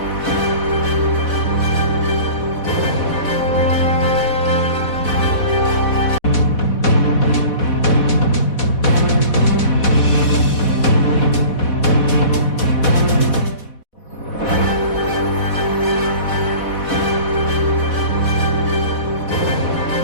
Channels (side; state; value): right; late; 4.1 ms